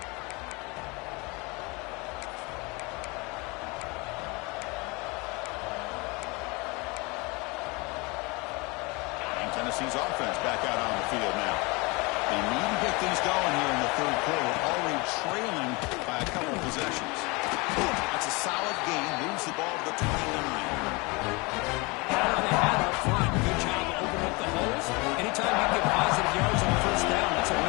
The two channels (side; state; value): right; quieter; 26.8 dB